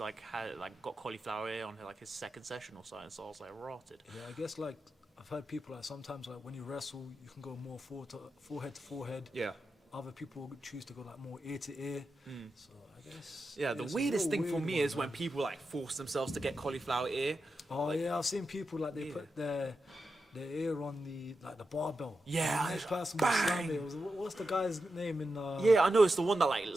got cauliflower ear on like his second session or something. So I was like rotted. Yeah, I guess like I've heard people like sometimes like when you wrestle you can go more forehead to forehead. Yeah. Other people choose to go like more ear to ear. So I guess. Yeah, the it's a weirdest real thing for weird me one, is when man. people like force themselves to get cauliflower ear. Oh yeah, I've seen people like they Yeah. put their ear on the barbell. Yeah, The next person bang! was slam it. What's the guy's name in? Yeah, I know it's the one that like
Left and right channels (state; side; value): normal; both; correlation 0.89